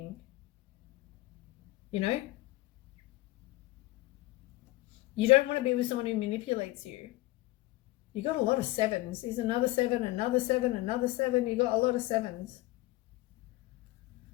You know? You don't want to be with someone who manipulates you. You got a lot of 7s. There's another 7, another 7, another 7. You got a lot of 7s.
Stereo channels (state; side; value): quieter; right; 18.9 dB